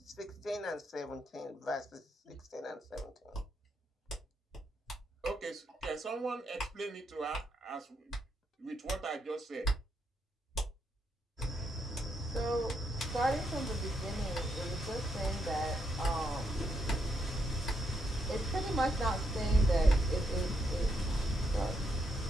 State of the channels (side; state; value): both; normal; correlation 0.79